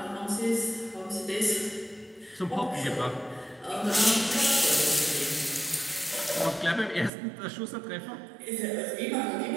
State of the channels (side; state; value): left; drops out; at 7.1 s